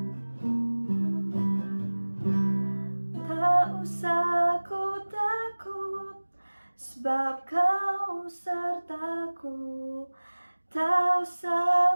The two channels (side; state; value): both; inverted; correlation -1.00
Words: Tak usah ku takut, sebab kau sertaku. Tak usah